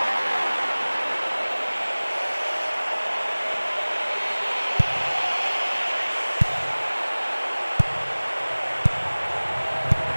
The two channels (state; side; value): inverted; both; correlation -1.00